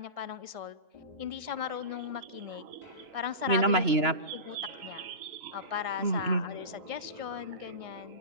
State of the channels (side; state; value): left; late; 2.9 ms